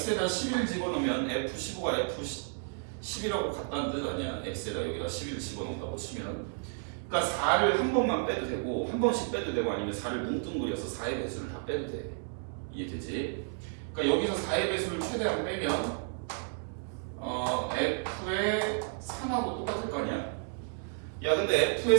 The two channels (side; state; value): left; silent; 56 dB below the other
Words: 11 집어넣으면 F15가 F10이라고 같다는 뜻 아니야? x에다 여기다 11 집어넣는다고 치면. 그러니까 4를 한 번만 빼도 되고, 한 번씩 빼도 되고, 아니면 4를 뭉뚱그려서 4의 배수를 다 빼도 돼. 이해되지? 그러니까 여기서 4의 배수를 최대한 빼면 f의 3하고 똑같을 거 아니야? 야, 근데 f의